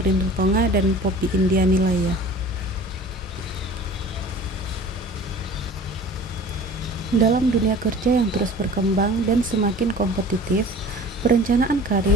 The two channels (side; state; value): both; normal; correlation 0.43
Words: Rutonga, dan Poppy India Nilaya. Dalam dunia kerja yang terus berkembang dan semakin kompetitif, perencanaan